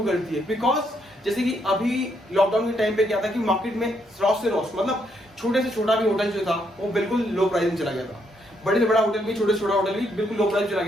करती है। बिकॉज जैसे कि अभी लॉकडाउन के टाइम पे क्या था कि मार्केट में रॉस से रॉस, मतलब छोटे से छोटा भी होटल जो था वो बिल्कुल लो प्राइस में चला गया था, बड़े से बड़ा होटल भी, छोटे से छोटा होटल भी बिल्कुल लो प्राइस चला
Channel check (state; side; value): normal; both; correlation 0.75